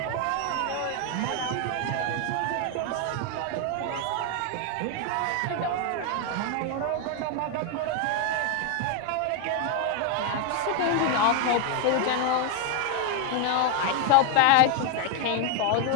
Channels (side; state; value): both; different; correlation 0.01